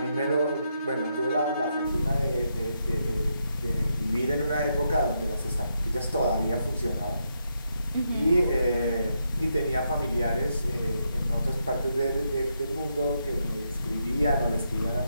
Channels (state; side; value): inverted; both; correlation -0.81